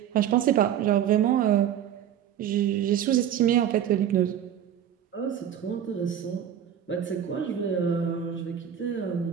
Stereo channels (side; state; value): left; quieter; 9.8 dB